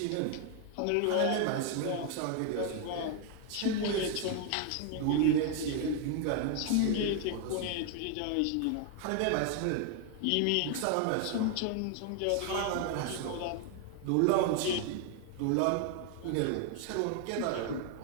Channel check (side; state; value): both; different; correlation 0.00